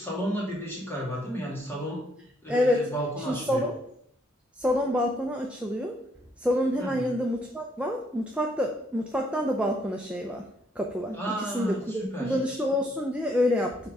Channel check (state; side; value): normal; both; correlation 0.70